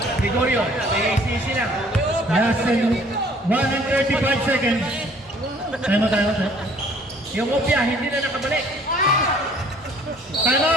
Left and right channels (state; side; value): normal; both; correlation 0.56